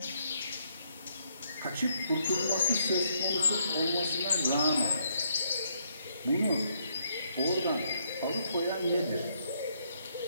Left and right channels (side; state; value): both; inverted; correlation -0.72